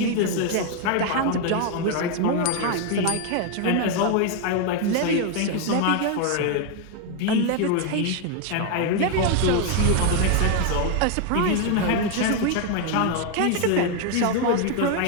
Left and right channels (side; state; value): both; different; correlation 0.01